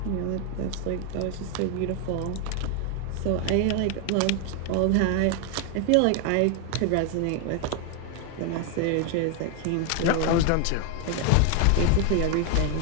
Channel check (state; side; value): different; both; correlation 0.01